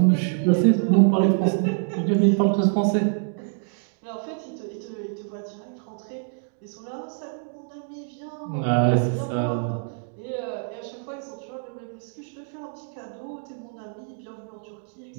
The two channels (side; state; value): left; silent; 61 dB below the other